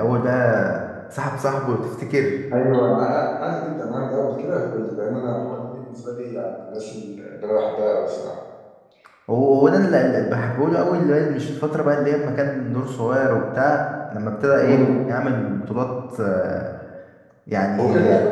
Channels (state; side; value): identical; both; correlation 1.00